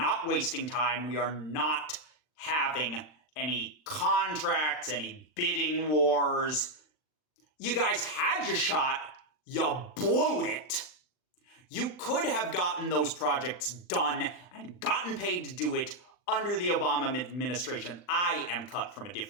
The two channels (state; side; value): late; right; 39 ms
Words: wasting time. We are not having any contracts, any bidding wars. You guys had your shot. You blew it. You could have gotten those projects done and gotten paid to do it under the Obama administration. I am cut from a